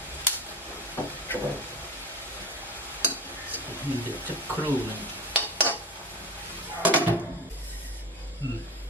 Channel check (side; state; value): both; normal; correlation 0.24